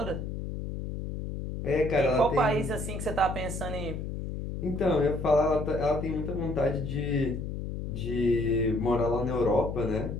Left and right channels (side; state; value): left; noise; hum, 5 dB below the sound